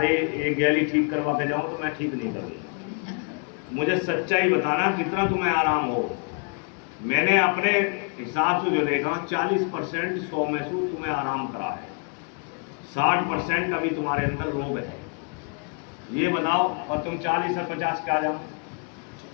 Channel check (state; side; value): quieter; right; 38.1 dB